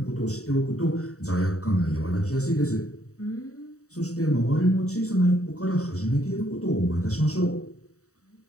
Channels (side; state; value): right; late; 0.65 ms